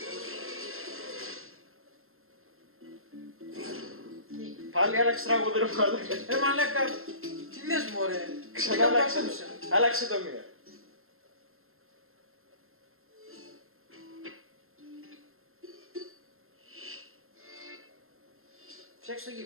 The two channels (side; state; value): left; late; 0.61 ms